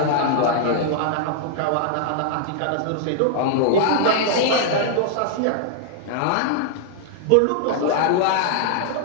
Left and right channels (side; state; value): both; different; correlation -0.01